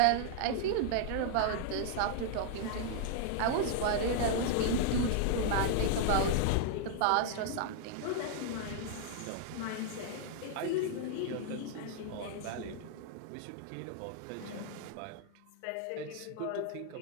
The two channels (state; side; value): different; both; correlation 0.00